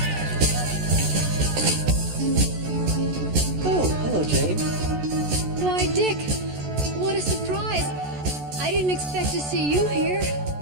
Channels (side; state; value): left; late; 14 ms